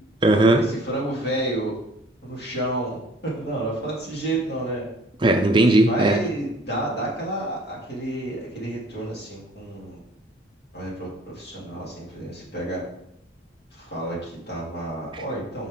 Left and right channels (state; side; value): normal; both; correlation 0.54